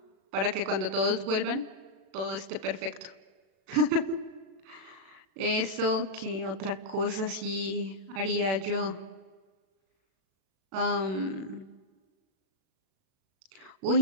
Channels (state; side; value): late; left; 36 ms